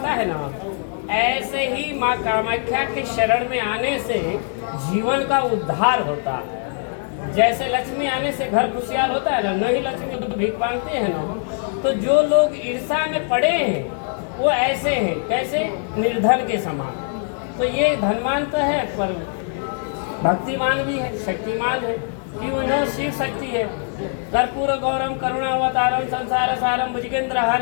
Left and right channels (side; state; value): right; silent; 57 dB below the other